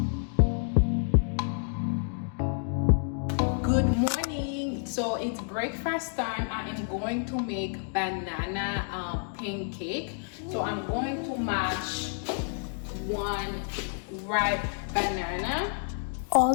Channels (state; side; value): silent; right; 58 dB below the other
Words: Good morning. So it's breakfast time. I am going to make banana pancake. So I'm going to mash one ripe banana.